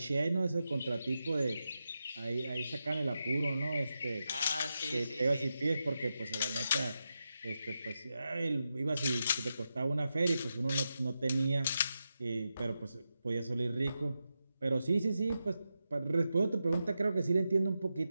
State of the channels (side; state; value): both; inverted; correlation -0.89